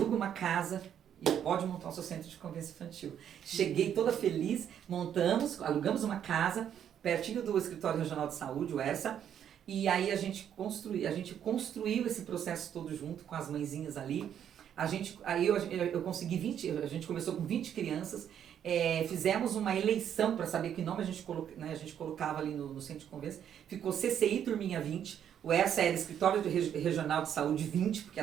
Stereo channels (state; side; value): quieter; left; 9.3 dB